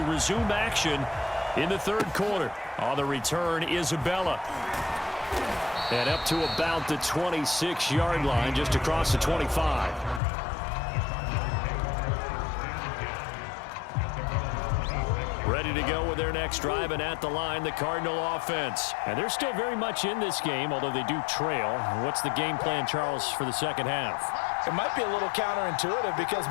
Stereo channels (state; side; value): drops out; right; at 10.2 s